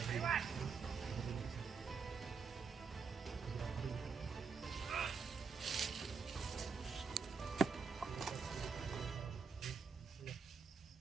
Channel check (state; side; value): quieter; left; 5.4 dB